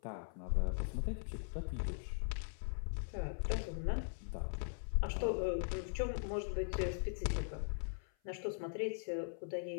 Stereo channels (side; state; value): right; silent; 51 dB below the other